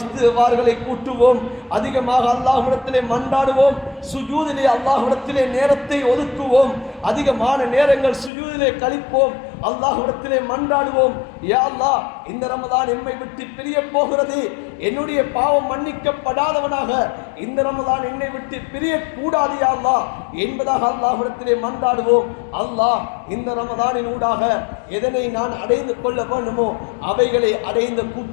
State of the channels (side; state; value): right; drops out; at 8.3 s